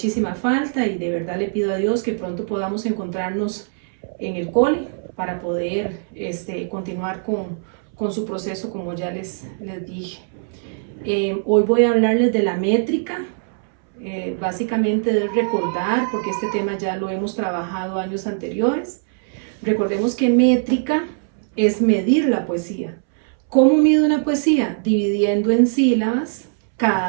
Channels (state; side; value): silent; left; 65 dB below the other